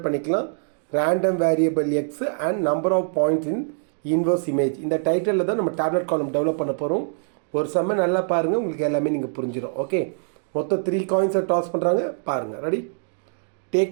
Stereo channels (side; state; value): left; silent; digital silence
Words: பண்ணிக்கலாம் random variable X and number of points in inverse image இந்த டைட்டிலில் தான் நம்ம டேப்லெட் காலம் டெவலப் பண்ண போகிறோம் ஒரு செம்ம நல்லா பாருங்கள் உங்களுக்கு எல்லாமே நீங்கள் புரிஞ்சிடும் ஓகே மொத்தம் 3 காயின்ஸை டாஸ் பண்ணுறாங்க பாருங்கள் ready